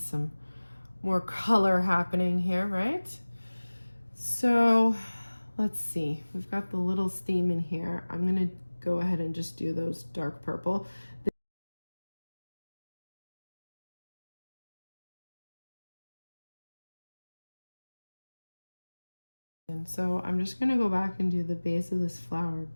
more color happening here, right? So let's see, we've got the little theme in here. I'm gonna go ahead and just do those dark purple. And so I'm just gonna go back and do the base of this flower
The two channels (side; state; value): both; inverted; correlation -1.00